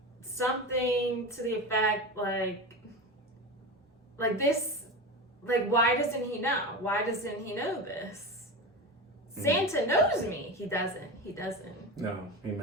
something to the effect like this, like, why doesn't he know? Why doesn't he know this? Santa knows me. He doesn't. No, he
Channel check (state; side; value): normal; both; correlation 0.24